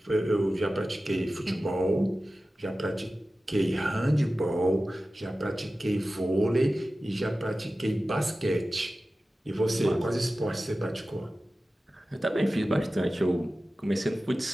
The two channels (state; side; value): normal; both; correlation 0.95